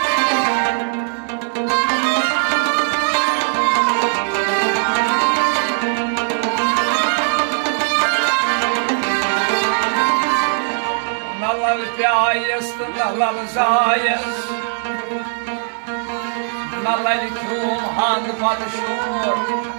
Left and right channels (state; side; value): silent; left; digital silence